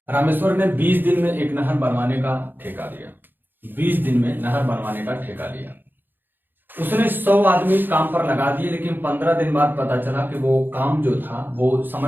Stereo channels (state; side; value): late; left; 0.094 ms